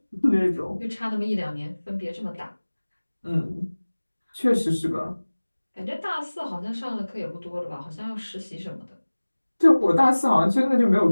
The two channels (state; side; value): inverted; both; correlation -1.00